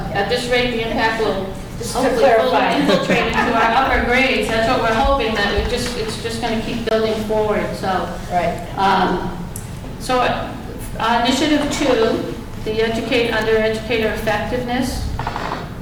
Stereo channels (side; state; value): both; identical; correlation 1.00